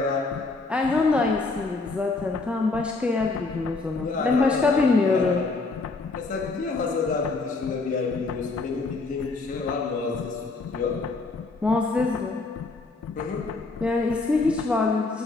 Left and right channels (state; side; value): quieter; right; 3.7 dB